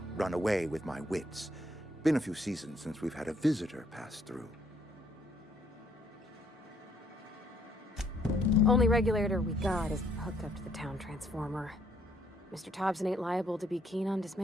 run away with my wits. Been a few seasons since we've had a visitor pass through. Only regulator we got is hooked up to the town transformer. Mr. Thompson ain't liable to be keen on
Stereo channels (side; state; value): both; normal; correlation 0.68